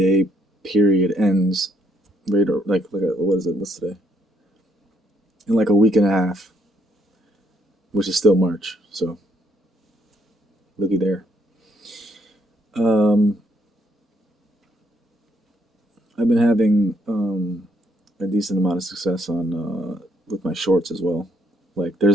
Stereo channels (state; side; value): normal; both; correlation 0.71